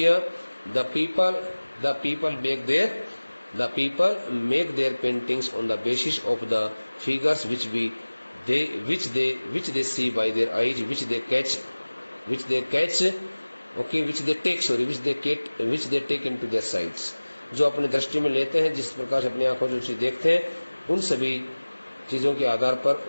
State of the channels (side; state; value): both; inverted; correlation -1.00